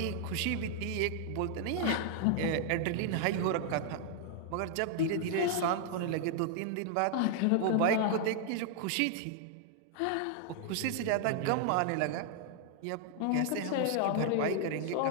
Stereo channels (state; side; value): different; both; correlation 0.00